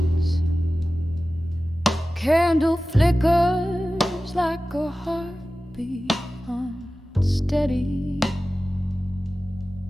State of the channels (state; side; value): normal; both; correlation 0.96